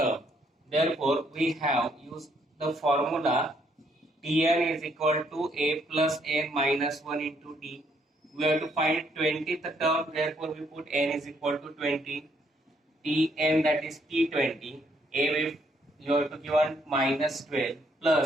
Therefore, we have used the formula Tn is equal to A plus N minus 1 into D. We have to find 20th term, therefore we put N is equal to 20. Tn, that is T20. A with you have to give on minus 12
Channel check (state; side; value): normal; both; correlation 0.70